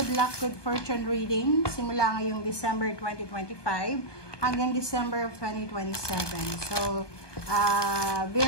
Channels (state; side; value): late; right; 1.2 ms